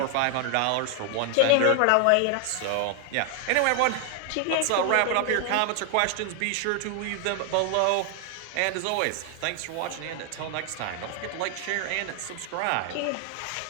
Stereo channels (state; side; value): different; both; correlation 0.00